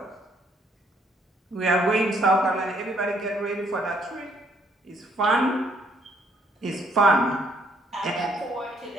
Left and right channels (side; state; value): both; normal; correlation 0.67